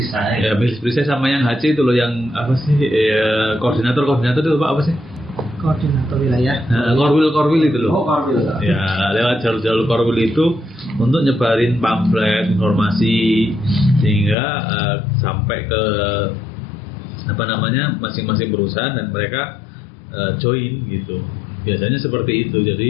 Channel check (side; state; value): right; drops out; at 14.4 s